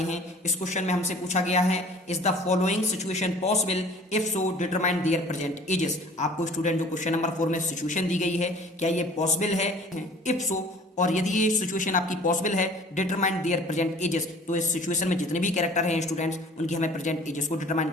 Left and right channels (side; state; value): both; normal; correlation 0.49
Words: हैं। इस क्वेश्चन में हमसे पूछा गया है, is the following situation possible, if so determine there present ages. आपको स्टूडेंट जो क्वेश्चन नंबर 4 में सिचुएशन दी गई है, क्या ये पॉसिबल है, इफ सो, और यदि ये सिचुएशन आपकी पॉसिबल है, डिटरमाइन देयर प्रेजेंट एजेस, तो इस सिचुएशन में जितने भी कैरेक्टर हैं स्टूडेंट्स, उनकी हमें प्रेजेंट एजेस को डिटरमाइन